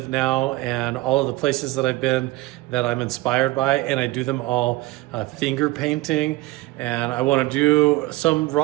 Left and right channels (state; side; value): quieter; left; 19.7 dB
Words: now and all of the places that I've been that I'm inspired by, and I do them all finger painting, and I want to do some